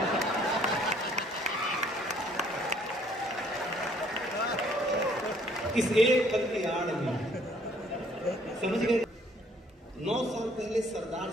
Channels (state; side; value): normal; both; correlation 0.61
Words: इस एक पल की आड़ में समझ गए, 9 साल पहले सरदार